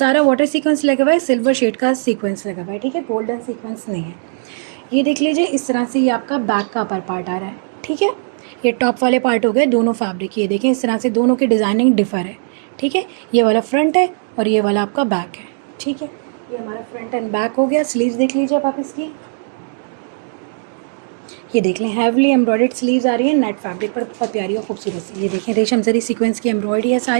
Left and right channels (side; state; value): left; silent; digital silence